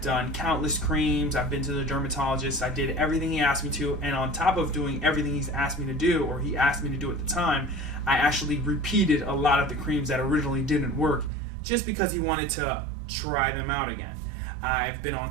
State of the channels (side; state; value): left; drops out; at 11.3 s